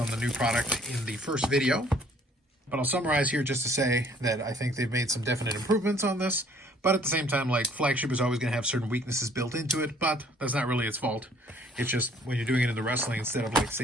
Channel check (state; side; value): normal; both; correlation 0.59